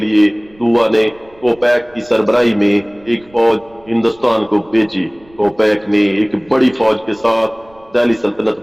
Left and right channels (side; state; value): right; noise; rumble, 28 dB below the sound